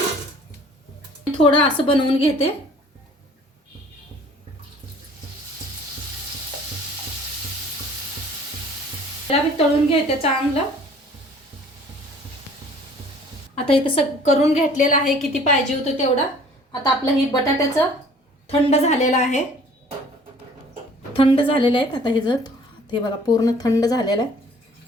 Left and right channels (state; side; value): normal; both; correlation 0.53